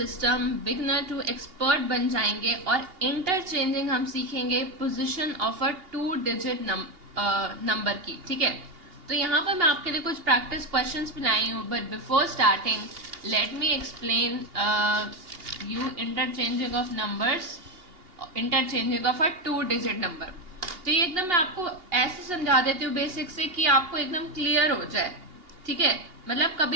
beginner to expert बन जाएंगे और इंटरचेंजिंग हम सीखेंगे position of a 2 digit number की। ठीक है, तो यहाँ पर मैं आपके लिए कुछ प्रैक्टिस क्वेश्चंस भी लाई हूँ, but before starting let me explain you interchanging of numbers, interchanging of a 2 digit number. तो ये एकदम मैं आपको ऐसे समझा देती हूँ बेसिक से कि आपको एकदम क्लियर हो जाए। ठीक है, मतलब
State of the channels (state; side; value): late; left; 2.8 ms